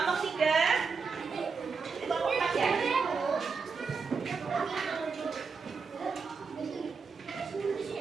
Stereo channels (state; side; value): quieter; left; 5.1 dB